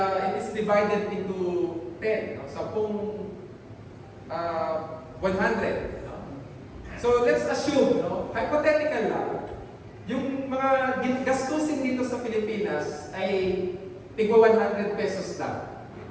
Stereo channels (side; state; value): both; identical; correlation 1.00